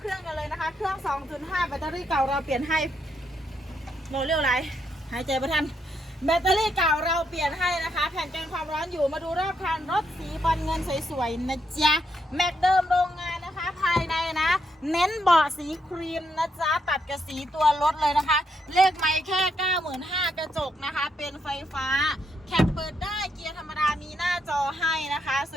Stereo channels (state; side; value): normal; both; correlation 0.78